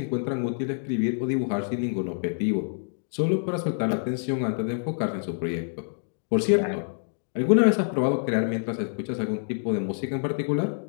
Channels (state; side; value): silent; right; digital silence